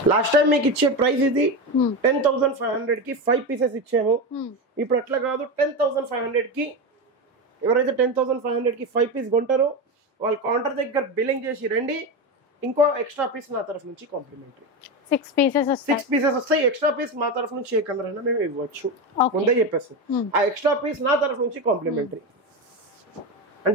లాస్ట్ టైం మీకు ఇచ్చే ప్రైస్ ఇది 10,500 కి 5 పీసెస్ ఇచ్చాము. ఇప్పుడు అట్లా కాదు, 10,500 కి ఎవరైతే 10,500 కి 5 పీస్ కొంటారో వాళ్ళు కౌంటర్ దగ్గర బిల్లింగ్ చేసి రండి, ఇంకో ఎక్స్ట్రా పీస్ నా తరఫు నుంచి కాంప్లిమెంటరీ. 6 పీసెస్ వస్తాయి. ఎక్స్ట్రా పీస్ మా తరఫు నుంచి ఏ కలర్ అయినా మేము ఇవ్వచ్చు, ముందే చెప్పేస్తాం. ఆ ఎక్స్ట్రా పీస్ నా తరఫు నుంచి కాంప్లిమెంటరీ.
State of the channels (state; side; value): normal; both; correlation 0.17